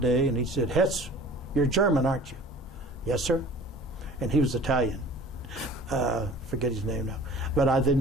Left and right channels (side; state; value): both; normal; correlation 0.46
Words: and he said, "Hess, you're German, aren't you?" "Yes, sir." And he was Italian. Forget his name now. But I